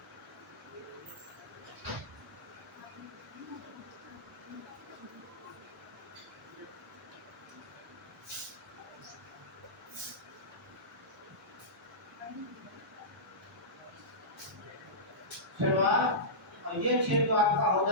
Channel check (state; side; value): normal; both; correlation -0.17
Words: सिलवास और ये क्षेत्र आपका हो